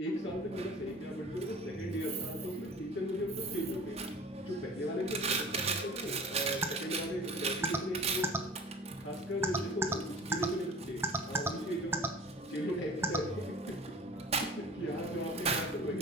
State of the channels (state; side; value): normal; both; correlation 0.42